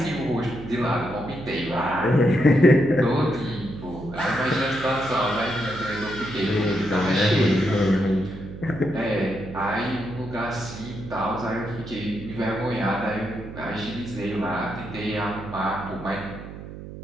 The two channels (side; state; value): right; noise; hum, 12 dB below the sound